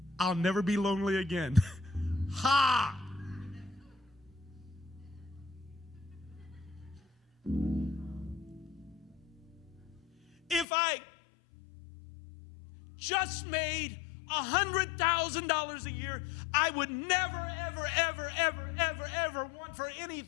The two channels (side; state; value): right; drops out; at 10.7 s